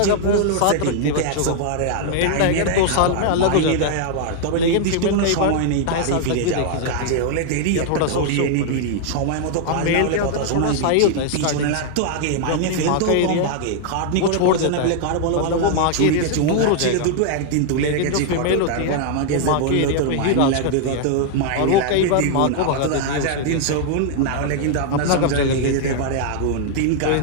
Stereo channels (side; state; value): both; different; correlation -0.01